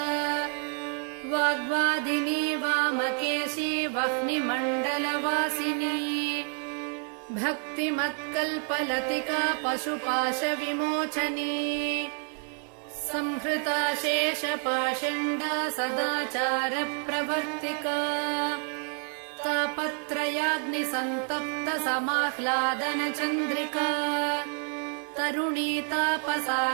वाग्वादिनी वामकेशी वह्निमण्डलवासिनी भक्तिमत्कल्पलतिका पशुपाशविमोचनी संहृता शेषपाषण्डा सदाचारप्रवर्तिका तापत्रयाग्निसन्तप्त समाह्लादनचन्द्रिका तरुणी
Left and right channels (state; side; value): quieter; left; 38.7 dB